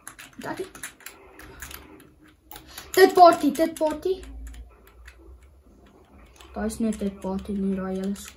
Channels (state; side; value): identical; both; correlation 1.00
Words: Dit party. Daar is net dit party nie, daar hele